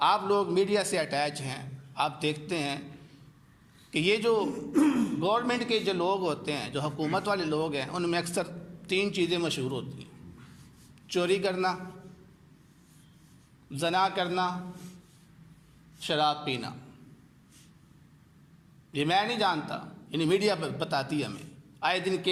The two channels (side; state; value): both; identical; correlation 1.00